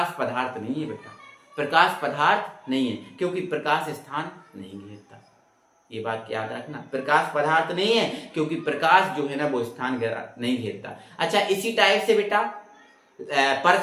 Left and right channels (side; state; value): both; identical; correlation 1.00